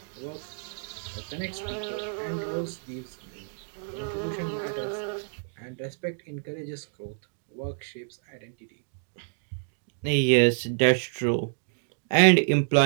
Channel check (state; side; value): silent; left; digital silence